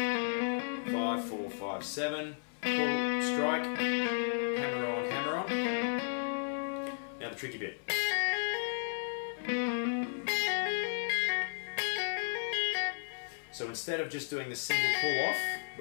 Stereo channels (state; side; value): silent; right; 55 dB below the other